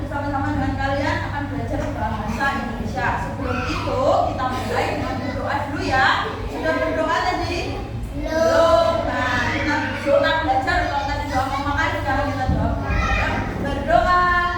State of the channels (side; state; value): both; identical; correlation 1.00